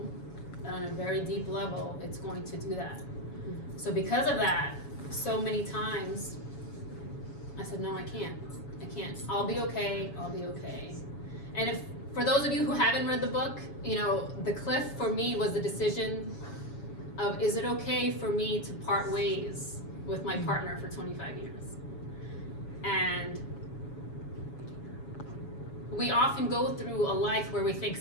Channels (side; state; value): right; late; 7.1 ms